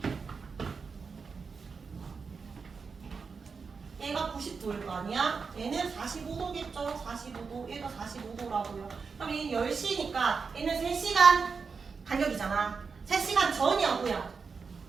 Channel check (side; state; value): left; quieter; 5.2 dB